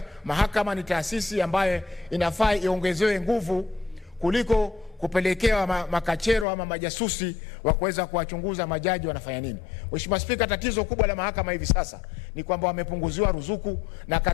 mahakama ni taasisi ambayo inafaa iongezewe nguvu kuliko kupelekewa makachero ama majasusi wa kuweza kuwachunguza majaji wanafanya nini. Mheshimiwa Spika, tatizo kubwa la mahakama hivi sasa ni kwamba wamepunguziwa ruzuku, na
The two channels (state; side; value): drops out; right; at 6.5 s